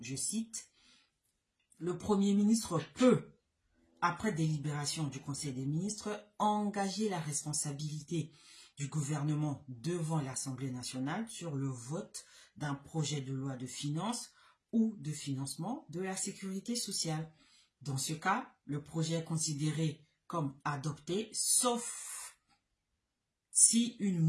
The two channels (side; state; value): both; identical; correlation 1.00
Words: cite, « Le Premier ministre peut, après délibération du Conseil des ministres, engager la responsabilité du gouvernement devant l'Assemblée nationale sur le vote d'un projet de loi de finances ou de financement de la sécurité sociale. Dans ce cas, le projet est considéré comme adopté, sauf si une